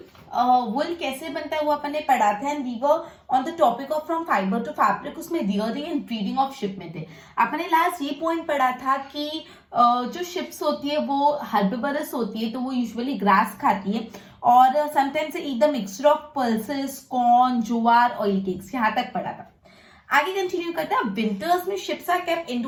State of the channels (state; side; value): identical; both; correlation 1.00